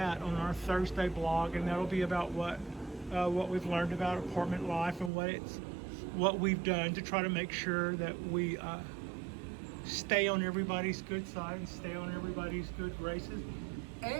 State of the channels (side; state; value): left; drops out; at 5.1 s